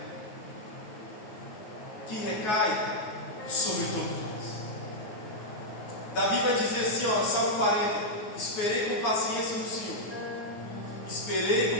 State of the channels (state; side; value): late; right; 9.4 ms